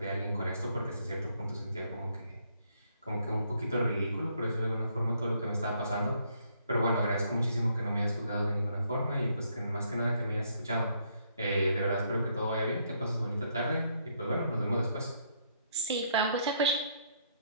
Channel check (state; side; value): inverted; both; correlation -0.71